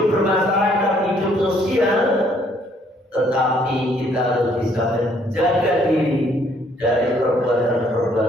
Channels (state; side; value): normal; both; correlation 0.65